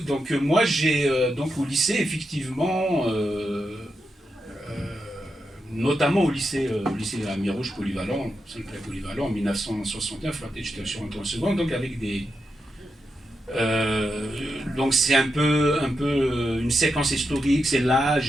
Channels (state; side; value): normal; both; correlation 0.86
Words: moi j'ai donc au lycée effectivement, notamment au lycée à Mirouge polyvalent, Saint-Clair polyvalent en 1969, j'étais sur en seconde, donc avec des donc c'est un peu une séquence historique, c'est